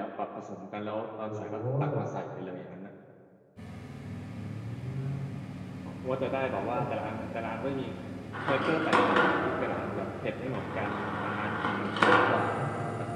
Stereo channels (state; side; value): identical; both; correlation 1.00